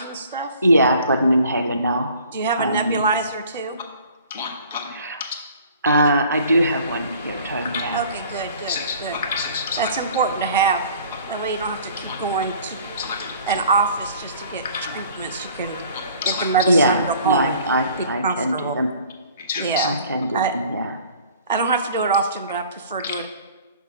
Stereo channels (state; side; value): inverted; both; correlation -0.51